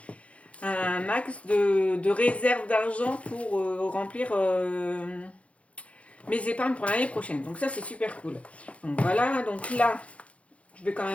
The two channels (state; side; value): late; right; 0.063 ms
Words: réserve d'argent pour remplir mes épargnes pour l'année prochaine. Donc ça, c'est super cool. Donc voilà, donc là, je vais quand